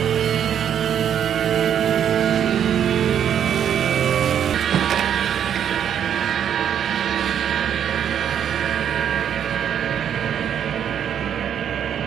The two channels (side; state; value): left; quieter; 9.1 dB